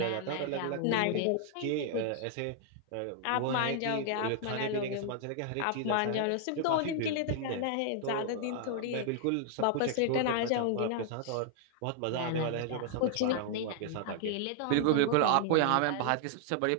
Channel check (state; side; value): different; both; correlation 0.00